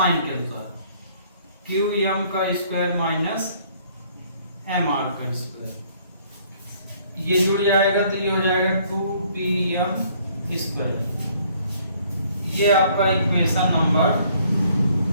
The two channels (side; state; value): both; inverted; correlation -0.62